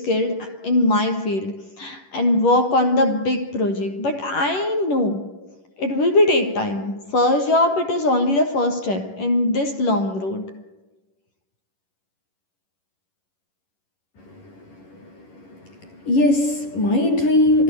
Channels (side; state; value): right; late; 11 ms